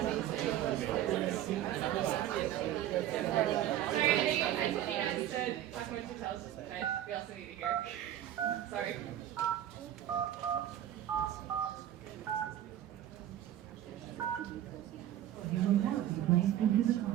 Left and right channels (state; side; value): quieter; left; 12.0 dB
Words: We also need to hear. Sorry. You will now be placed into the